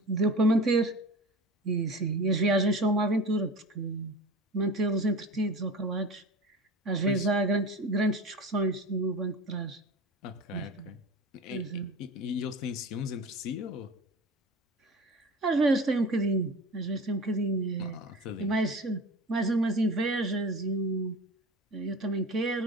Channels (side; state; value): both; normal; correlation 0.34